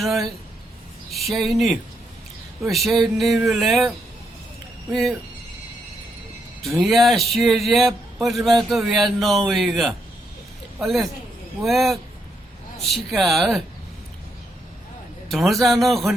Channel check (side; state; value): both; normal; correlation 0.78